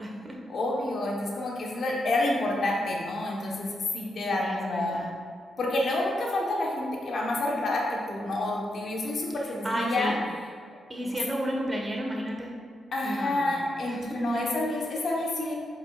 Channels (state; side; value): normal; both; correlation 0.83